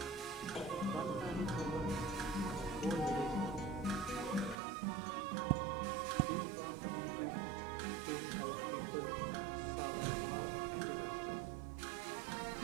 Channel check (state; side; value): drops out; left; at 4.5 s